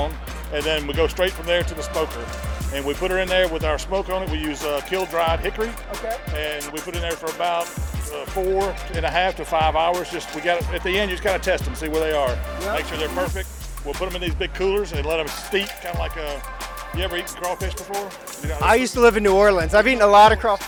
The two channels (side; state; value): both; identical; correlation 1.00